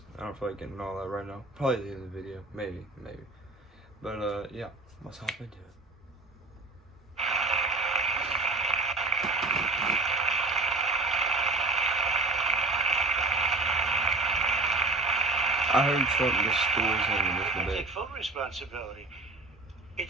I don't feel like getting all that right now. Probably at the end of the video, maybe. But yeah, let's hop into it. I heard Trump destroys him in this I debate. take full responsibility.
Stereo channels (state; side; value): quieter; left; 3.1 dB